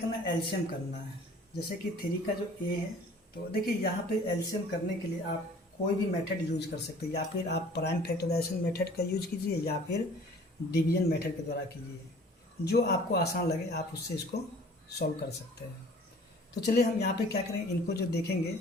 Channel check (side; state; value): both; normal; correlation 0.50